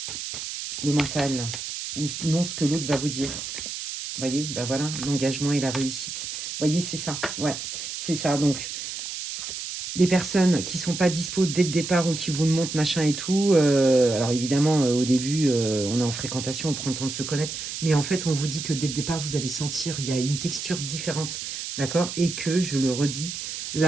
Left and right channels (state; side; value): noise; right; hiss, 6 dB below the sound